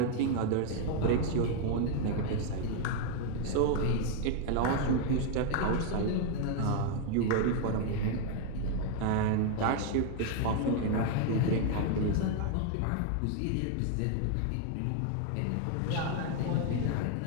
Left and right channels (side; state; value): both; different; correlation 0.00